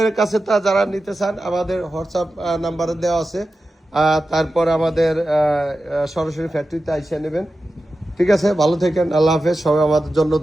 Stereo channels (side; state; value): both; normal; correlation 0.92